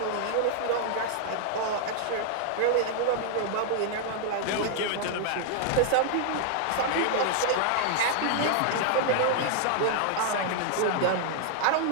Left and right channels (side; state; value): both; different; correlation 0.00